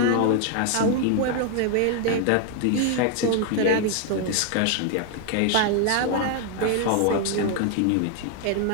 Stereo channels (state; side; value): different; both; correlation 0.01